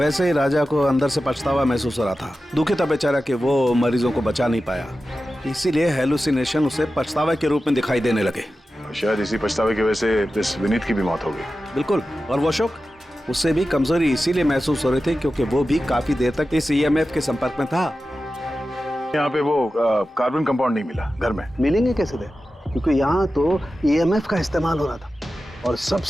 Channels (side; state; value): both; normal; correlation 0.93